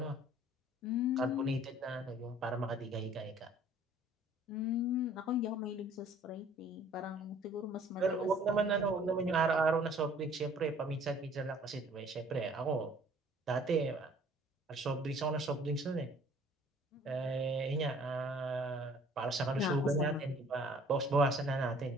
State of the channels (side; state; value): both; normal; correlation 0.54